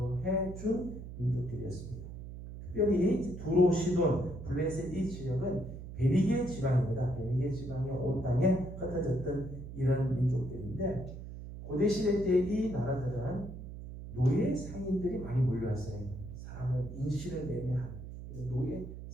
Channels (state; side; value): noise; right; hum, 11 dB below the sound